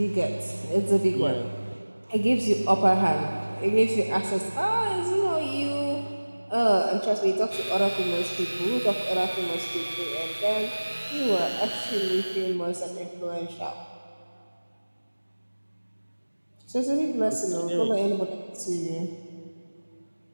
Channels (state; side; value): inverted; both; correlation -1.00